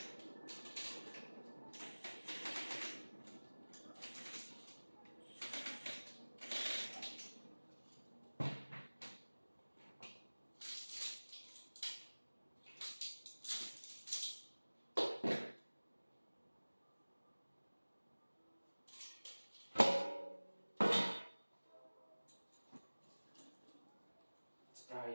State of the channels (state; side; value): inverted; both; correlation -1.00